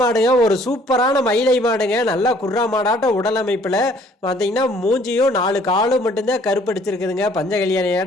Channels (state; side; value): normal; both; correlation 0.59